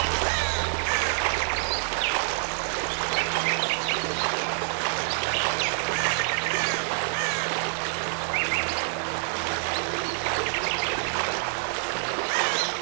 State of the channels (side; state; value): left; silent; 60 dB below the other